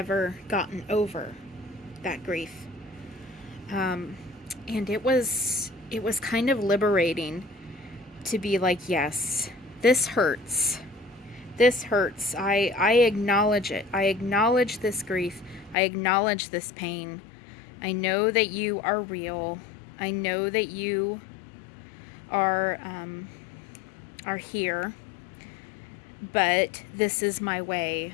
gotten over that grief. And it was kind of liberating to be like, yes, this hurts. This hurts. I acknowledge it. I acknowledge this grief. I acknowledge this pain. I know that you are real. I know that you are here. But this is my way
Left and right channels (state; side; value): drops out; right; at 15.8 s